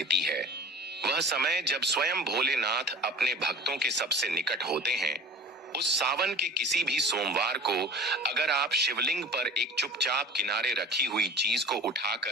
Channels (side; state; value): both; normal; correlation 0.39